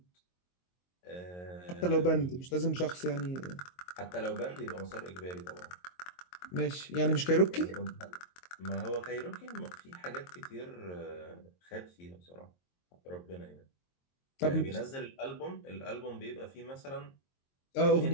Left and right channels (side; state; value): right; late; 22 ms